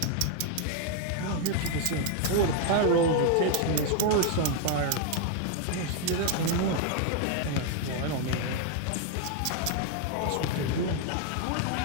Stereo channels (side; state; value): both; different; correlation 0.01